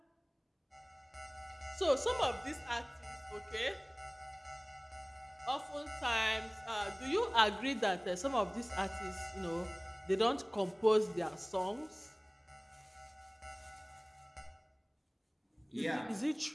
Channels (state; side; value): identical; both; correlation 1.00